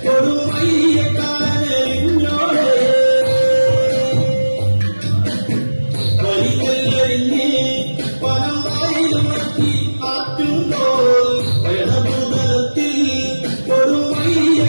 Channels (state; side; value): inverted; both; correlation -1.00